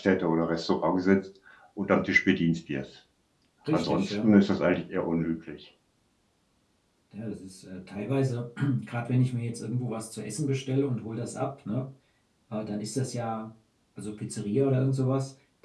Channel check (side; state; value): both; identical; correlation 1.00